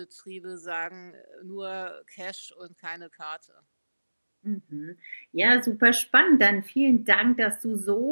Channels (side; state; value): both; inverted; correlation -1.00